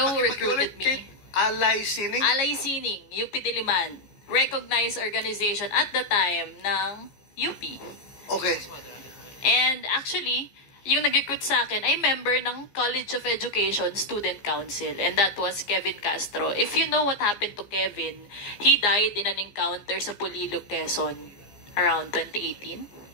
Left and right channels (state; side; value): late; right; 14 ms